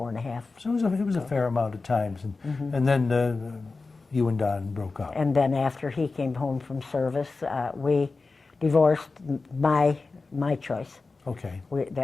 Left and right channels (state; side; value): quieter; right; 3.9 dB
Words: So it was a fair amount of times. And then You and Don broke up. And then after he came home from service, we divorced, my choice. Okay.